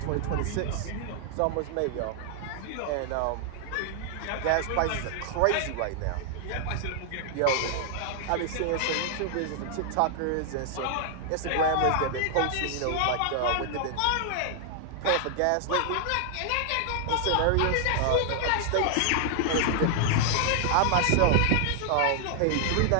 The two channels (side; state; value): both; different; correlation 0.00